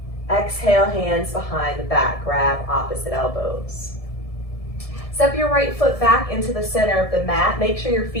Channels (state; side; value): late; right; 1.7 ms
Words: Exhale, hands behind the back, grab opposite elbows. Step your right foot back into the center of the mat. Make sure your